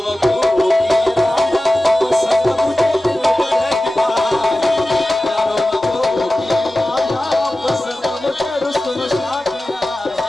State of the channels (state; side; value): normal; both; correlation 0.95